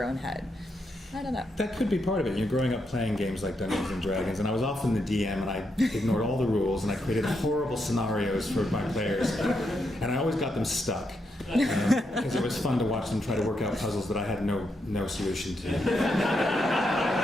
own head. I don't know. That could be part of it. You're growing up playing games like Dungeons and Dragons, and I was often the DM, and I ignored all the rules, and I created horrible scenarios for my players, and I always got them stuck because it was fun to watch them try to work out puzzles that I had no solution to.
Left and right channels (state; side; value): normal; both; correlation 0.81